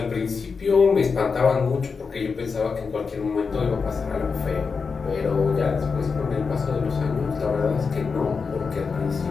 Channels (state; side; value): quieter; right; 5.1 dB